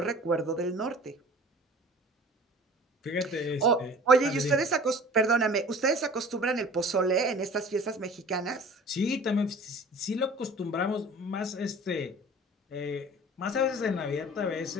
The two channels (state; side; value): normal; both; correlation 0.44